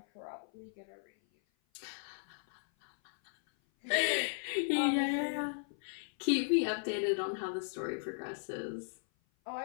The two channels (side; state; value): right; silent; 54 dB below the other